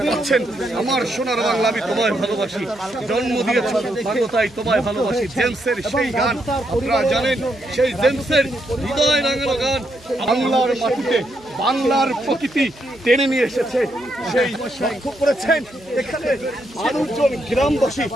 পাচ্ছেন আমার সোনার বাংলা আমি তোমায় ভালোবাসি, জন্ম দিয়েছ বাংলায় তোমায় ভালোবাসি, জেমসের সেই গান আপনারা জানেন, সেই জেমসের হৃদয় রাঙানো গান বাংলার মাটিতে বাংলার প্রকৃতি টেনে নিয়ে এসেছে। সেই লক্ষ্য করেছেন এখানে মানুষজন, গ্রামবাসী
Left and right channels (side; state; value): right; noise; hum, 25 dB below the sound